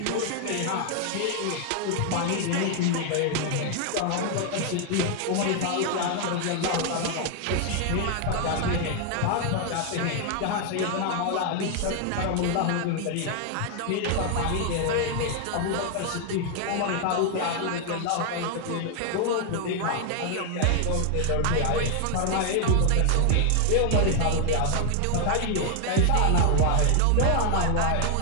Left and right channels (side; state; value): both; different; correlation 0.00